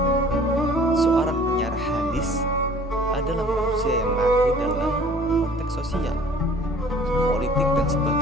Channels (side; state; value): both; normal; correlation 0.50